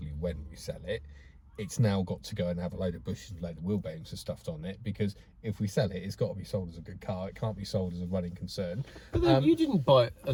when we sell it, it's now got to go and have a load of bushes and a load of wheel bearings and stuff on it, because if we sell it, it's got to be sold as a good car. It can't be sold as a running concern. But then you didn't buy it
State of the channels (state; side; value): identical; both; correlation 1.00